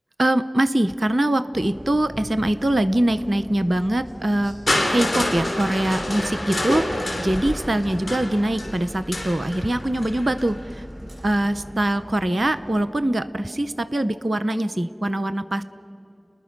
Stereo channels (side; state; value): both; normal; correlation 0.97